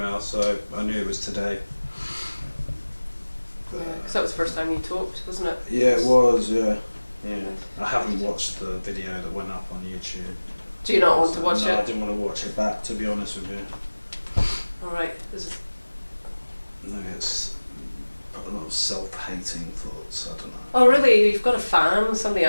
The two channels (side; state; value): both; inverted; correlation -1.00